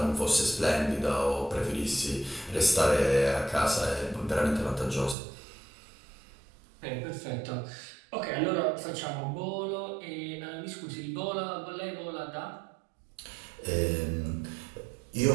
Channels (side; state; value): left; drops out; at 5.2 s